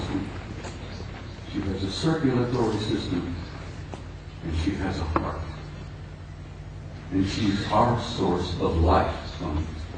She has a circulatory system. And she has a heart. And she's our source of life on this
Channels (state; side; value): identical; both; correlation 1.00